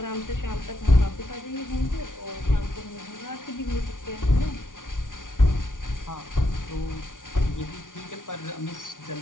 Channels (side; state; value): right; late; 0.88 ms